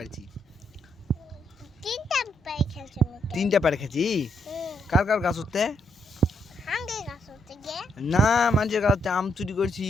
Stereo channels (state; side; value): normal; both; correlation 0.76